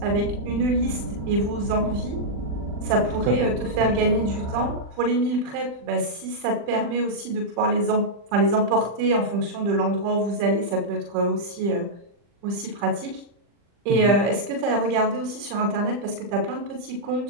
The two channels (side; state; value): left; late; 40 ms